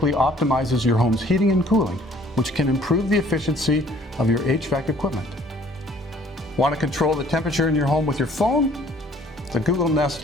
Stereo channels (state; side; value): normal; both; correlation 0.57